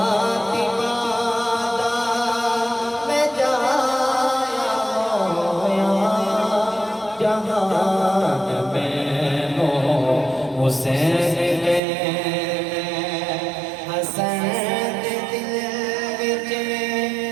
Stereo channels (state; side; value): drops out; left; at 11.8 s